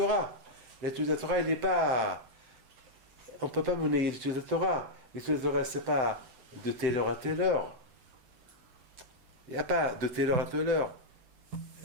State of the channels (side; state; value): left; late; 7.9 ms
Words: L'étude de la Torah, il n'est pas. On ne peut pas mener l'étude de la Torah. L'étude de la Torah, c'est pas de telle heure à telle heure. Il n'y a pas de telle heure à telle heure.